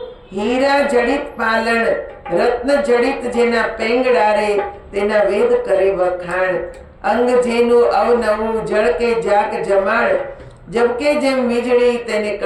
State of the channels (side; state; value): both; identical; correlation 1.00